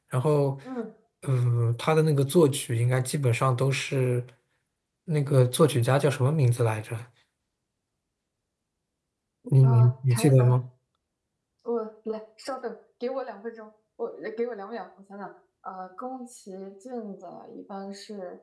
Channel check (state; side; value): identical; both; correlation 1.00